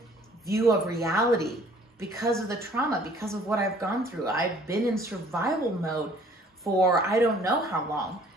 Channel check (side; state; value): both; normal; correlation 0.56